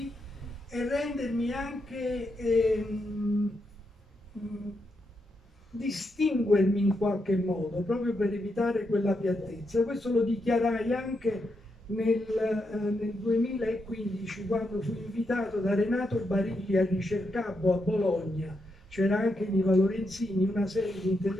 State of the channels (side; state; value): both; normal; correlation 0.83